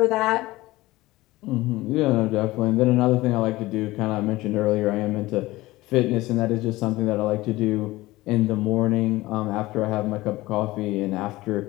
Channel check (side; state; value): right; quieter; 18.8 dB